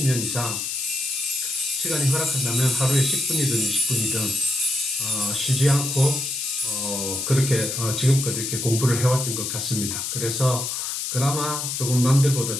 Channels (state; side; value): noise; left; hiss, 3 dB below the sound